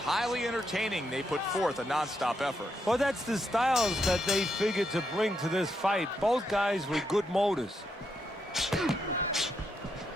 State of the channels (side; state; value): both; normal; correlation 0.81